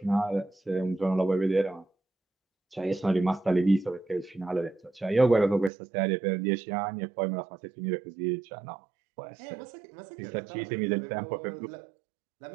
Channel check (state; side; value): drops out; left; at 5.7 s